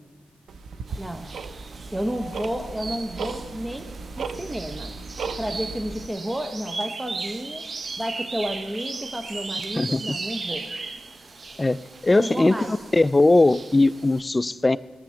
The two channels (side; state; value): both; normal; correlation 0.97